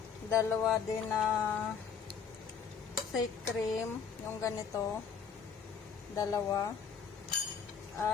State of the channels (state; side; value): quieter; right; 6.6 dB